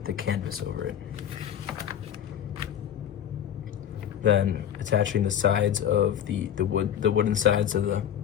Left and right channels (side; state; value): right; quieter; 9.7 dB